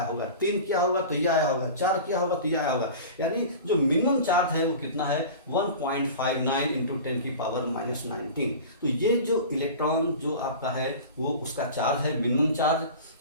होगा, 3 किया होगा तो ये आया होगा, 4 किया होगा तो ये आया होगा। यानी जो मिनिमम चार्ज है वो कितना है 1.59 इंटू 10 की पावर -19। तो ये जो इलेक्ट्रॉन जो आपका है वो उसका चार्ज है, मिनिमम चार्ज।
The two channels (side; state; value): both; inverted; correlation -0.35